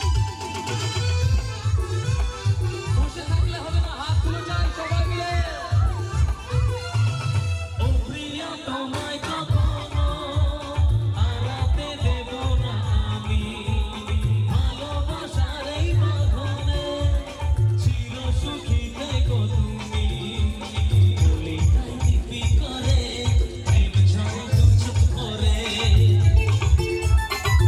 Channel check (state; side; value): identical; both; correlation 1.00